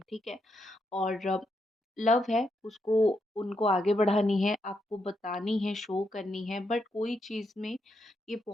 ठीक है? और लव है, उसको उनको आगे बढ़ानी है, आपको बतानी है, शो करनी है, बट कोई चीज़ में ये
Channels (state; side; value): normal; both; correlation 0.81